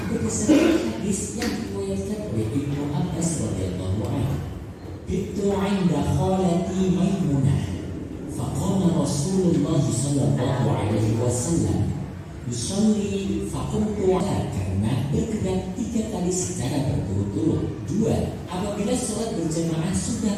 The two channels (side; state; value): both; identical; correlation 1.00